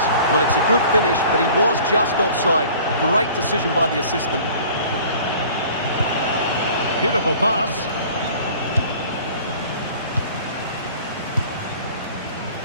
Well, it's a good finish, but he was just offside. Great decision by the assistant. Beautiful pass.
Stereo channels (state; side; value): inverted; both; correlation -0.48